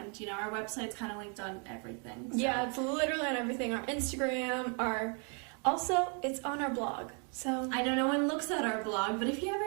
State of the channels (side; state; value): left; quieter; 38.6 dB